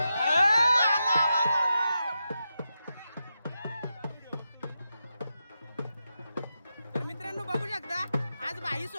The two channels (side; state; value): both; inverted; correlation -0.88